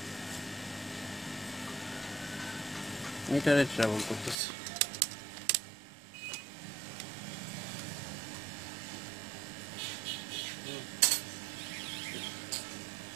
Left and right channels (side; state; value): left; drops out; at 4.4 s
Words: মিটারে ট্রাভেল করতেছে।